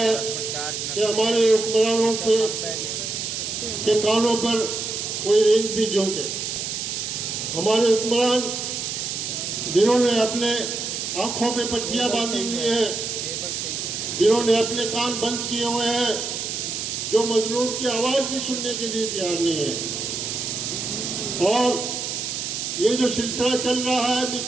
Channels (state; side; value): noise; right; hiss, 4 dB below the sound